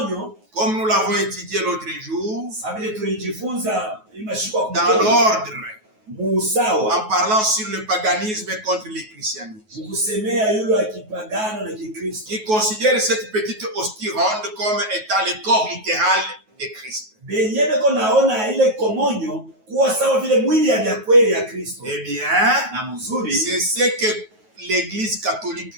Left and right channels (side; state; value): left; late; 9.3 ms